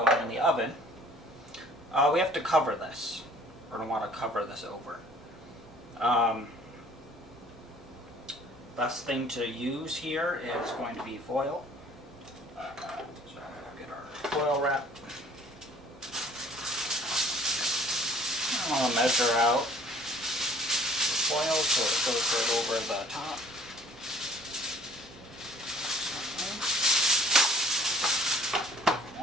in the oven, we have to cover this. We're going to want to cover this over. Best thing to use here is going to be foil. So we'll get our foil wrap. I'm going to measure out the foil so it goes right over the top.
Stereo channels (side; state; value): both; normal; correlation 0.55